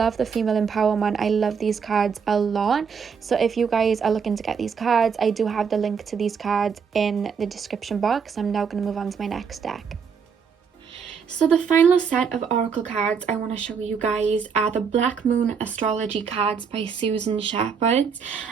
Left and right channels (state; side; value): quieter; left; 6.3 dB